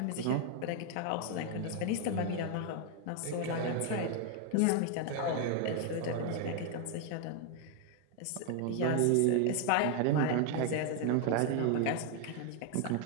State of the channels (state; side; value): different; both; correlation 0.01